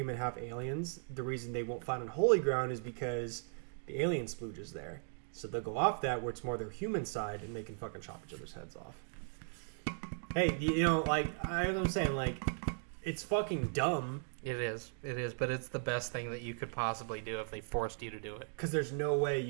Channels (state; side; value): silent; left; digital silence